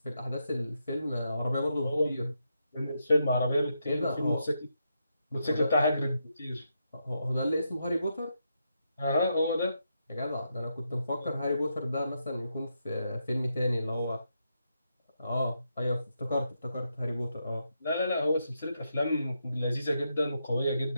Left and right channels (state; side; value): inverted; both; correlation -0.83